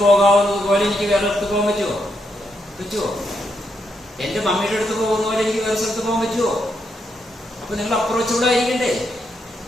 പോകാവുന്നത് പോലെ എനിക്ക് വേറെ അടുത്ത് പോകാൻ പറ്റുമോ? എന്റെ മമ്മിയുടെ അടുത്ത് പോകുന്ന പോലെ എനിക്ക് വേറെ സ്ഥലത്ത് പോകാൻ പറ്റുമോ? അപ്പൊ നിങ്ങൾ അപ്രോച്ചബിൾ ആയിരിക്കണ്ടേ,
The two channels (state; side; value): normal; both; correlation 0.80